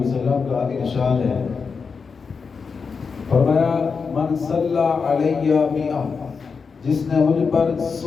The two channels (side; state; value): right; quieter; 5.3 dB